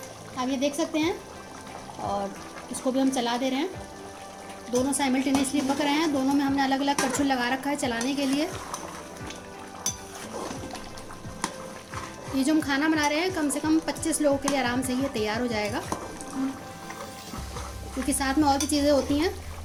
आप ये देख सकते हैं। और इसको भी हम चला दे रहे हैं। दोनों साइमल्टेनियसली पक रहे हैं। दोनों में हमने अलग अलग करछुल लगा रखा है चलाने के लिए। ये जो हम खाना बना रहे हैं कम से कम 25 लोगों के लिए आराम से ये तैयार हो जाएगा, क्योंकि साथ में और भी चीज़ें होती हैं।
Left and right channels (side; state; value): both; identical; correlation 1.00